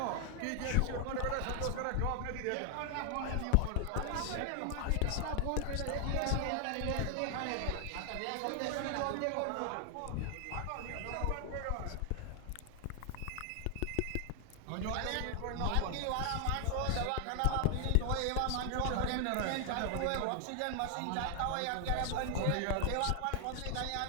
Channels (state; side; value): different; both; correlation 0.00